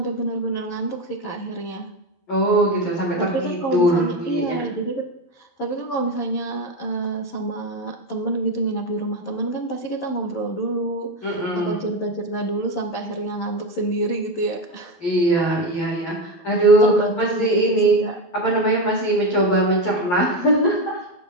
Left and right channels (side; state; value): right; late; 11 ms